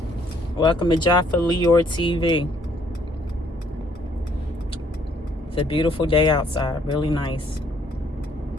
Welcome to Jaffa Leor TV. It's a beautiful day outside, really nice.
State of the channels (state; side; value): normal; both; correlation 0.65